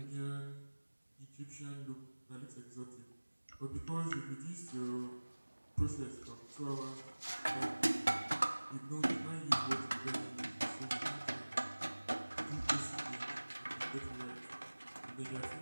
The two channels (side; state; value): both; inverted; correlation -1.00